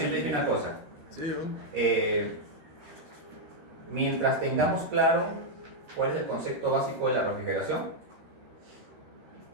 una cosa. Sí, Mientras tengamos claro cuál es el concepto básico de la refrigeración,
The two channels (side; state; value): left; late; 13 ms